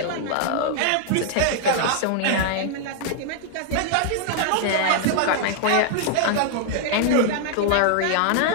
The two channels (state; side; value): different; both; correlation 0.00